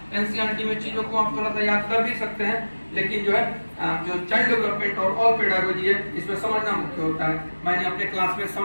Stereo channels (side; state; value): both; inverted; correlation -1.00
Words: एनसीईआरटी में चीजों को आप थोड़ा सा याद कर भी सकते हैं, लेकिन जो है जो चाइल्ड डेवलपमेंट और ऑल पेडागोजी है इसमें समझना मुख्य होता है। मैंने अपने क्लास में